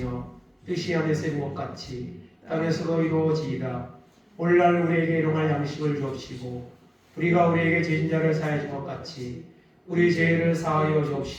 뜻이 하늘에서 이룬 것 같이 땅에서도 이루어지이다. 오늘날 우리에게 일용할 양식을 주옵시고 우리가 우리에게 죄진 자를 사하여 준 것 같이 우리 죄를 사하여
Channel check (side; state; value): both; identical; correlation 1.00